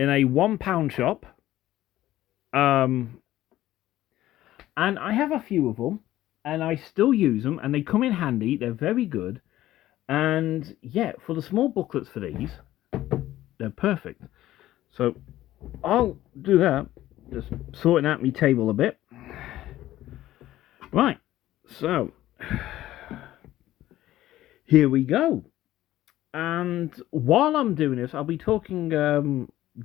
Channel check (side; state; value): right; quieter; 14.5 dB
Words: a £1 shop. And I have a few of them, and I still use them, and they come in handy. They're very good, and yeah, for the small booklets for these, they're perfect. So I'll do that, just sorting out my table a bit. Right, so here we go. And while I'm doing this, I'll be talking